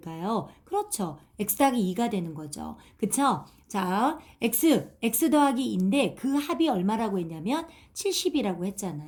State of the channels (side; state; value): both; identical; correlation 1.00